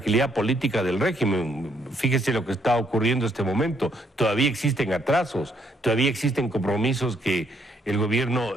política del régimen. Fíjese lo que está ocurriendo en este momento. Todavía existen atrasos, todavía existen compromisos que el gobierno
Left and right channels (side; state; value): both; normal; correlation 0.71